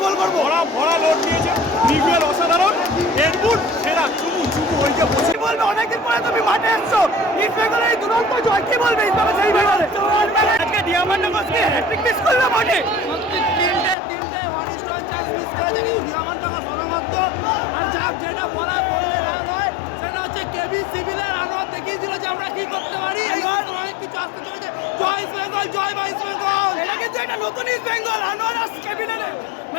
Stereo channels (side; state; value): right; drops out; at 14.0 s